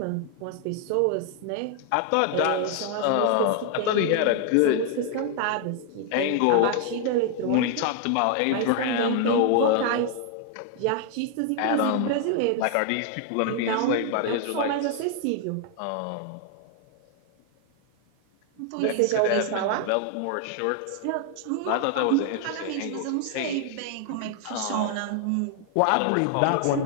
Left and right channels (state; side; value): different; both; correlation 0.00